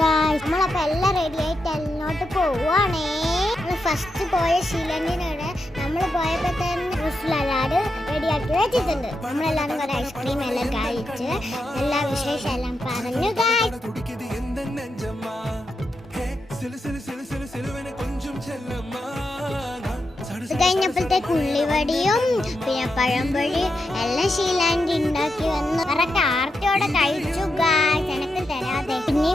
ഗായ്സ്. നമ്മളപ്പോ എല്ലാം റെഡി ആയിട്ട് എല്ലോട്ട് പോവാണേ. ഫസ്റ്റ് പോയ ഷീലണ്ടിനോട് നമ്മൾ പോയപ്പോ തന്നെ എല്ലാവരും റെഡിയാക്കി വെച്ചിട്ടുണ്ട്. നമ്മളെല്ലാരും കുറെ ഐസ്ക്രീം എല്ലാം കഴിച്ച് എല്ലാ വിശേഷം എല്ലാം പറഞ്ഞു ഗായ്സ്. കഴിഞ്ഞപ്പോഴത്തേക്ക് ഉള്ളിവടിയും പിന്നെ പഴംപൊഴി എല്ലാം ഷീലാൻഡി ഉണ്ടാക്കി വന്നു. കറക്റ്റ് ആർത്തിയോടെ കഴിച്ചു ഗായ്സ്, എനിക്ക് തരാതെ.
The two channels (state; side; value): normal; both; correlation 0.86